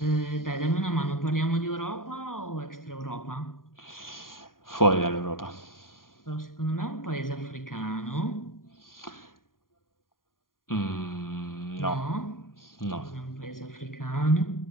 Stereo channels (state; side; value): late; right; 0.91 ms